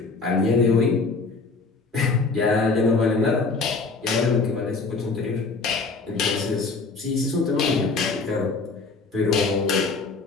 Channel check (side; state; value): right; quieter; 4.1 dB